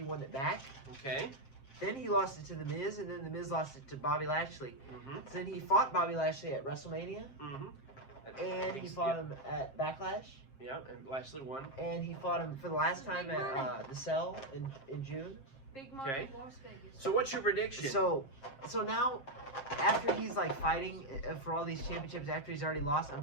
won it back. Okay. Then he lost it to The Miz, and then The Miz lost it to Bobby Lashley. Mm-hmm. So then he fought Bobby Lashley at WrestleMania, Mm-hmm. and he fought him at Backlash. Yeah, and Lashley won. And he fought him for the last time at the Cell in June. Big money, Okay. Las Vegas. So what's your prediction? So now, after he's like fighting for all these championships, after he's already lost, I'm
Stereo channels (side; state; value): right; late; 7.5 ms